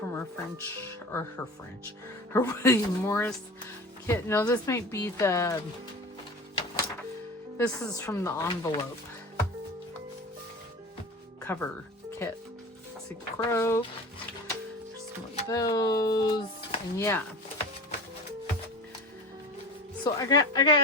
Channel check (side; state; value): both; normal; correlation 0.34